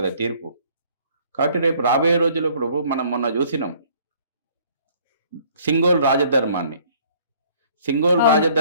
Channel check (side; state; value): both; inverted; correlation -0.58